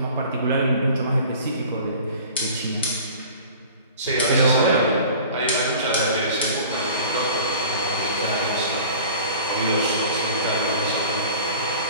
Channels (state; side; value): inverted; both; correlation -0.43